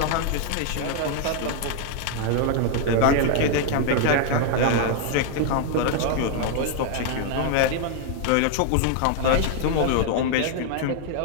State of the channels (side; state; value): both; different; correlation 0.00